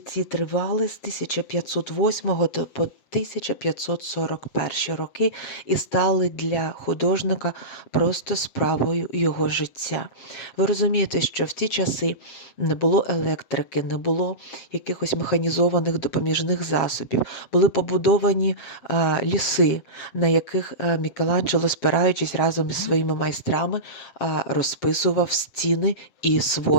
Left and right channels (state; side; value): late; right; 7.7 ms